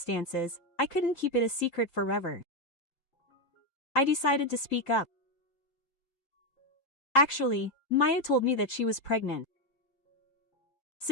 I couldn't keep it a secret forever. I decided to speak up. Actually, Mayu told me that she was pregnant.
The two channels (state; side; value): late; right; 3.8 ms